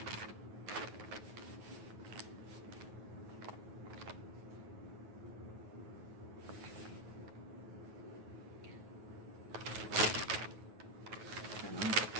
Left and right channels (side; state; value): left; late; 9.3 ms